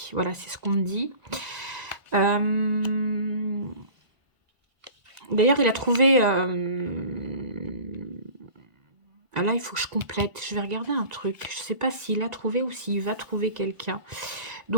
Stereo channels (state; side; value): late; left; 1.5 ms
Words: Voilà, c'est ce qu'on me dit. D'ailleurs, il a trouvé... Ah là, il faut que je complète. Je vais regarder un truc. Je ne sais pas s'il a trouvé ou s'il va trouver quelqu'un.